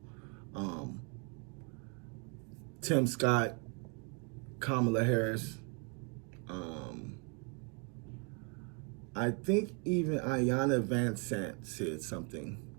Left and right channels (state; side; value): quieter; left; 36.7 dB